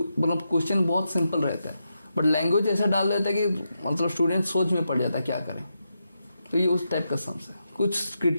मतलब क्वेश्चन बहुत सिंपल रहता है, बट लैंग्वेज ऐसा डाल देता है कि मतलब स्टूडेंट सोच में पड़ जाता है क्या करें, तो ये उस टाइप का सम्स है। कुछ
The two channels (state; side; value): inverted; both; correlation -0.86